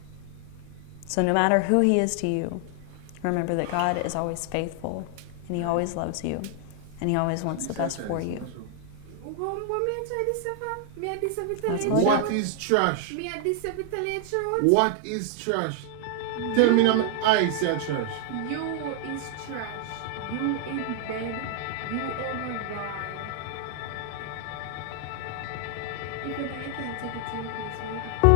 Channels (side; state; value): both; different; correlation 0.00